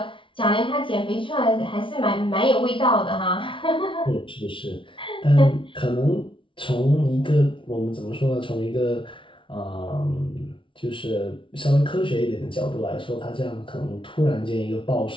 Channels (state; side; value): late; right; 0.25 ms